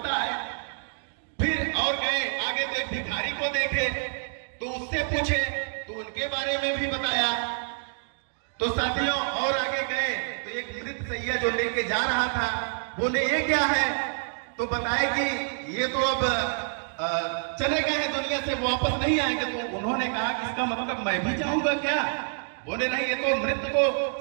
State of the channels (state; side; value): silent; left; digital silence